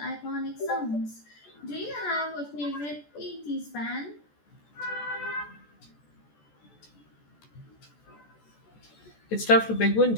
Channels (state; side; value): late; right; 14 ms